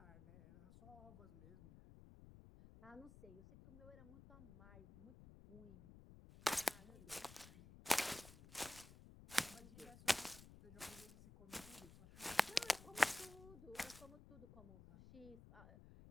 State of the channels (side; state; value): left; noise; rumble, 17 dB below the sound